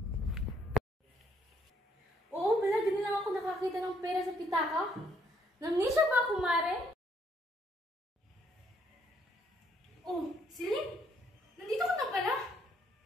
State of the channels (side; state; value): both; normal; correlation 0.69